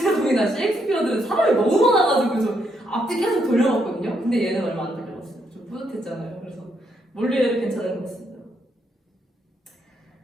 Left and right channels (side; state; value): both; normal; correlation 0.76